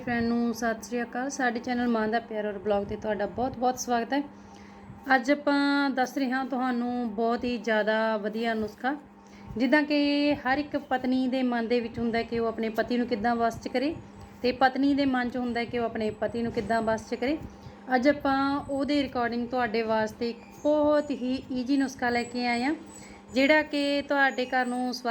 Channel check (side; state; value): both; identical; correlation 1.00